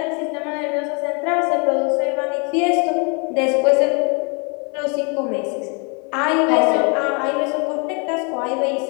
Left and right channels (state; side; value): quieter; right; 35.3 dB